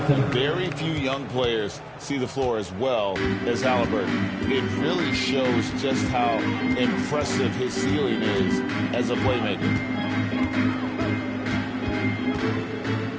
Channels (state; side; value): identical; both; correlation 1.00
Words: Very few young players see the floor as well as Halliburton. It really shows just how impressive his ceiling is as a playmaker.